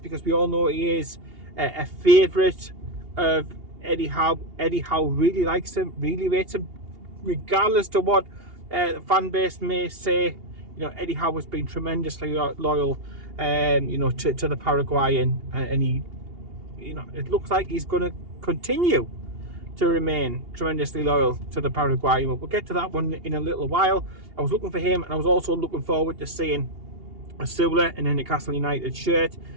because we all know he is a favourite of Eddie Howe. Eddie Howe really likes him, really rates him, regardless to what the fan base may say. You know, Eddie Howe has been tremendously loyal, you know, to the Paraguayan, and he, you know, it looks like he's going to continue to remain tremendously loyal to the Paraguayan. We'll get to that one in a little while. I was looking for him, and I was also looking forward to seeing Asula in a Newcastle United shirt,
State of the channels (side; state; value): left; late; 2.8 ms